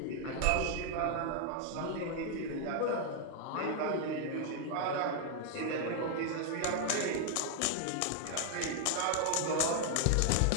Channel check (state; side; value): different; both; correlation 0.00